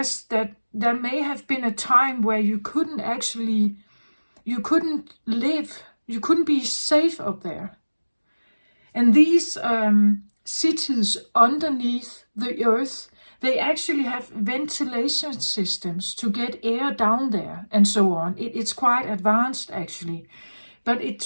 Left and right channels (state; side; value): inverted; both; correlation -1.00